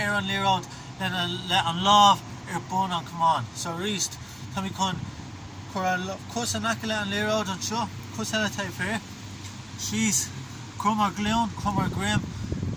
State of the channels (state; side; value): identical; both; correlation 1.00